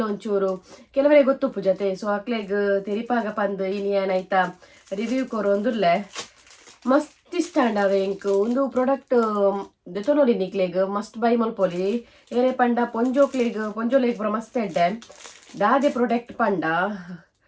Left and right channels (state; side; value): identical; both; correlation 1.00